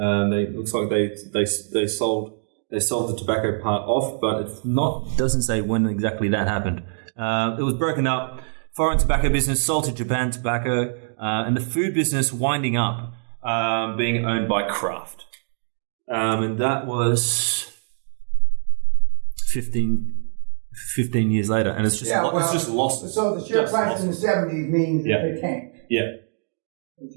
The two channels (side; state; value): left; silent; digital silence